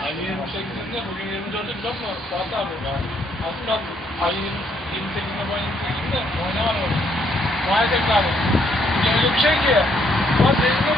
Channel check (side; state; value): both; normal; correlation 0.71